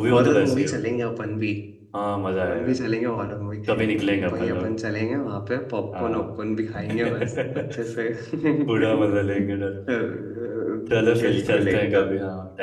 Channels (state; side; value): identical; both; correlation 1.00